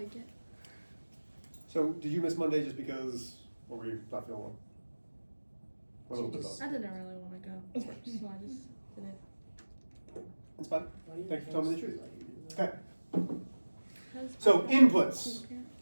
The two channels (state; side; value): inverted; both; correlation -1.00